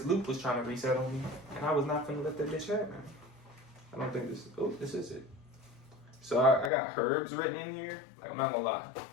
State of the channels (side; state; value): right; drops out; at 6.7 s